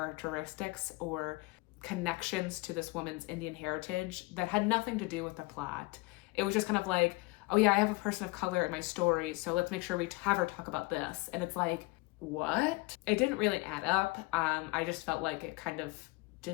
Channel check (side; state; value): right; quieter; 24.2 dB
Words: or connections to this woman's Indian heritage that had nothing to do with the plot. It was just kind of like, oh yeah, I have a person of color in my story, so let's make sure we have her talk about this. And it's like, what? It didn't really add up. I just felt like it kind of